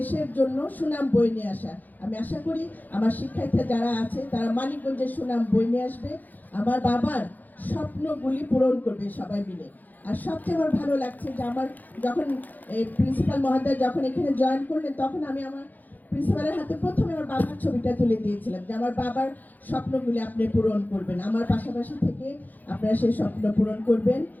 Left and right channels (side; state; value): right; late; 0.083 ms